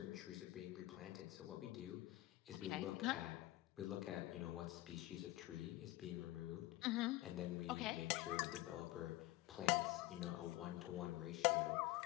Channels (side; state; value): right; quieter; 17.6 dB